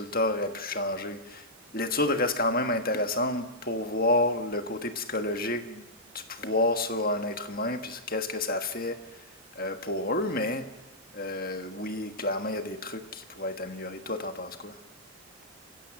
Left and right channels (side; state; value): both; normal; correlation -0.12